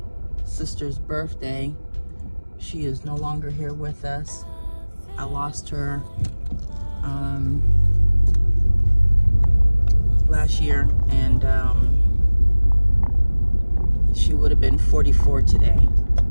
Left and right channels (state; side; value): inverted; both; correlation -1.00